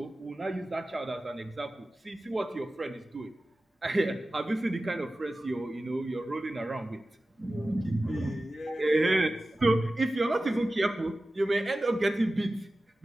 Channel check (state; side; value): normal; both; correlation 0.95